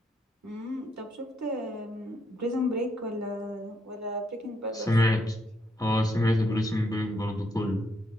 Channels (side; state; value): both; normal; correlation 0.75